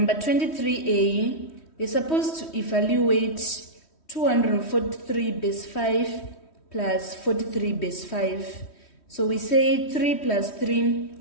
23a, we're supposed to evaluate 243 base 5 plus 43 base 5. So we say 3 plus 3,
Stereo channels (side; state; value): right; late; 3.1 ms